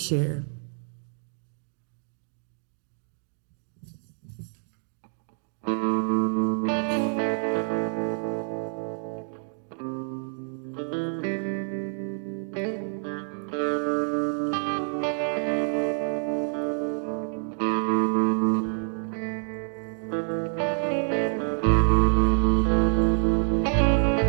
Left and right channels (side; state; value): left; silent; 57 dB below the other